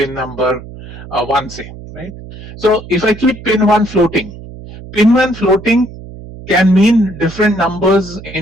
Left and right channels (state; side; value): noise; right; hum, 15 dB below the sound